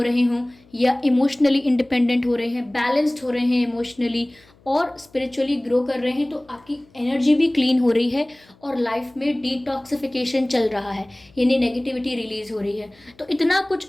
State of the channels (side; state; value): left; noise; hum, 30 dB below the sound